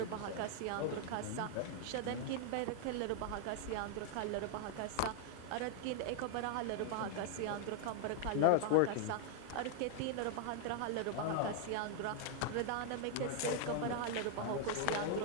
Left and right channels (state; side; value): different; both; correlation -0.01